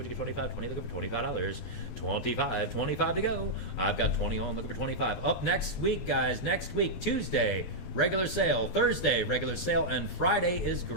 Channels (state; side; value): late; right; 12 ms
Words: you get 25? 20 looking for $25. 25. 25 to go. I've got 20 on looking for 25. Up next week, guys. Next week, Tuesday. Regular sale, Thursday, regular sale, and Friday is